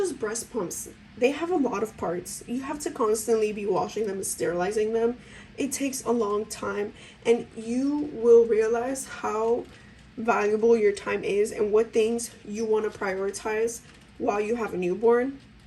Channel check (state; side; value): identical; both; correlation 1.00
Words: breast pumps. They have a lot of parts. You have to constantly be washing them and sterilizing them. It takes a long time, and you will realize how valuable your time is and what things you want to prioritize while you have a newborn.